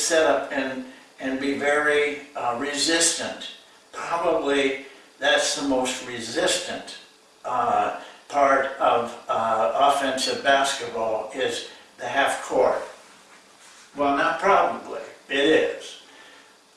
up and be very resistant. Probably that's the most resistant part of offensive basketball is the half-court. Well, not probably, it is.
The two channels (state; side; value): identical; both; correlation 1.00